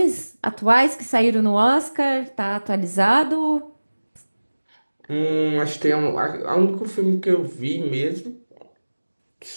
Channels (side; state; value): both; inverted; correlation -1.00